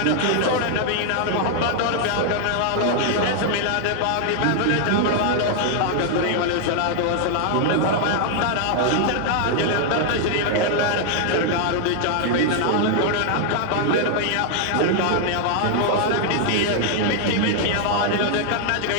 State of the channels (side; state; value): both; different; correlation 0.00